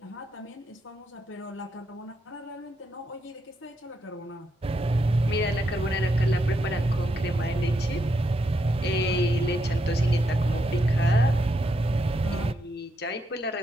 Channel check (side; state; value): both; normal; correlation 0.80